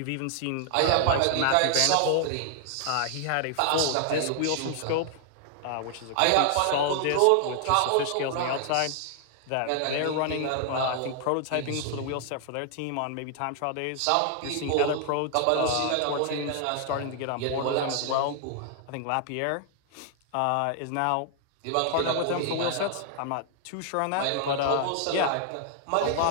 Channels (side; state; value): both; different; correlation 0.00